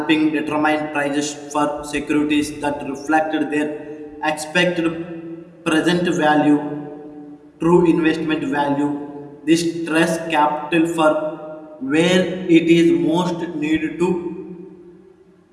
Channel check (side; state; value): both; identical; correlation 1.00